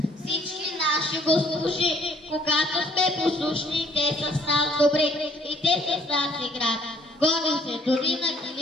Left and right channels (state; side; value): normal; both; correlation 0.60